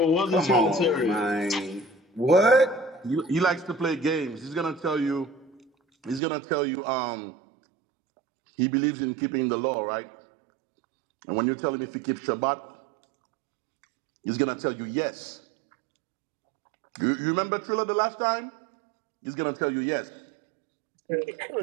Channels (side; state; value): left; drops out; at 6.2 s